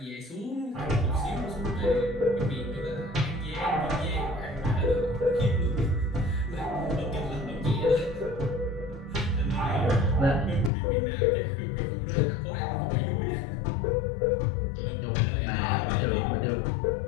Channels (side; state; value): right; drops out; at 10.7 s